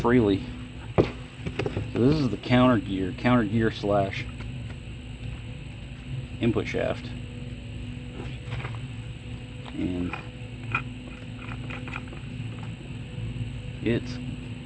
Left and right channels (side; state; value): both; identical; correlation 1.00